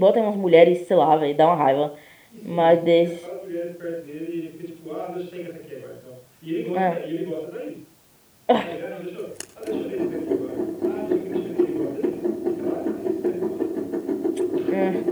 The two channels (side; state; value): both; identical; correlation 1.00